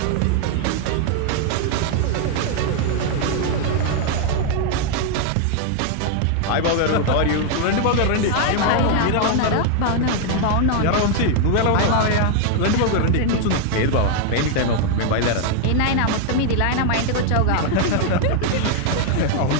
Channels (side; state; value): both; different; correlation 0.00